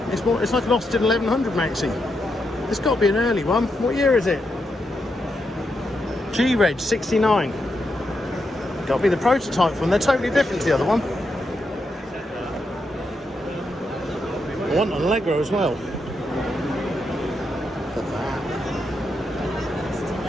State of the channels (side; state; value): both; normal; correlation 0.83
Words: It's more. It's like an Austin 1100 Maxi. It's got to be an early one. What year is it? G-Reg 69. Got to be the prototype one. They're totally different to the other one. I want an Allegro as well. Look at that.